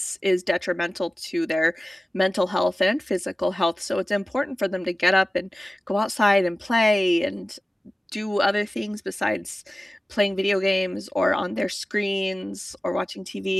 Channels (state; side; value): normal; both; correlation 0.96